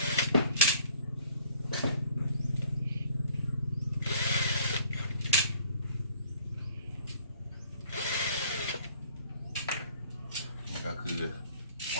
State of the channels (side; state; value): both; inverted; correlation -0.56